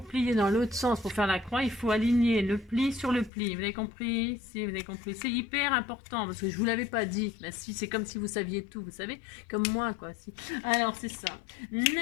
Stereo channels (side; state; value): right; drops out; at 3.3 s